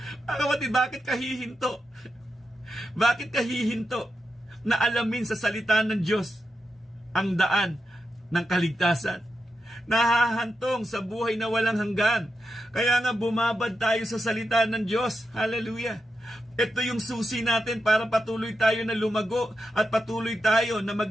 Kapatid, bakit kahihinto? Bakit kahihinto na alamin sa salita ng Diyos ang daan ng kaligtasan? Nahahantong sa buhay na walang hanggan. Kaya nga bumabad tayo sa salita ng Diyos. Hallelujah! Ito yung susi natin para patuloy tayo na lumago at patuloy tayo na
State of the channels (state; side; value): normal; both; correlation 0.88